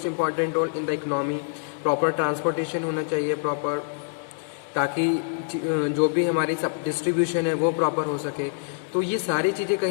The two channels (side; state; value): right; silent; digital silence